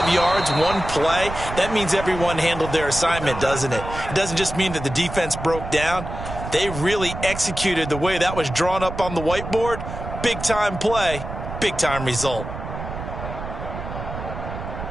yards, one play. That means everyone handled their assignment, doesn't it? It doesn't just mean that the defense broke down. They really executed the way that was drawn up on the whiteboard. Big-time play, big-time result.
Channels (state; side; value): noise; right; rumble, 8 dB below the sound